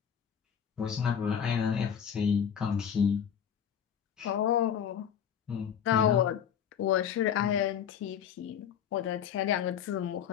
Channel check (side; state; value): right; quieter; 8.4 dB